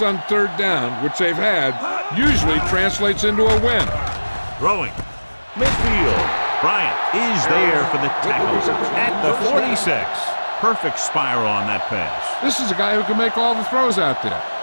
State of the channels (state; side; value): inverted; both; correlation -1.00